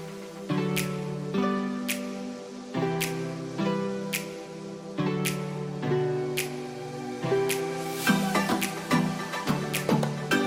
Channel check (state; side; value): identical; both; correlation 1.00